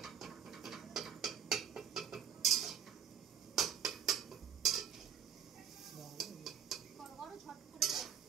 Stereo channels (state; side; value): quieter; left; 8.4 dB